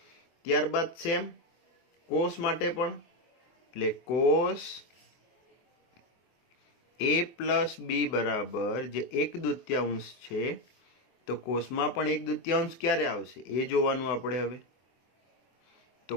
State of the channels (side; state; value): right; late; 24 ms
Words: ત્યારબાદ સેમ કોસ માટે પણ, એટલે કોસ A + B બરાબર જે 1/2 છે, તો કોસમાં પણ 1/2 ક્યારે આવશે એ જોવાનું આપણે હવે. તો